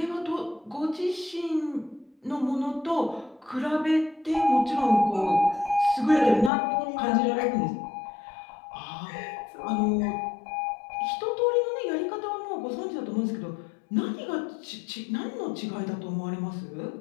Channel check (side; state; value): right; drops out; at 6.5 s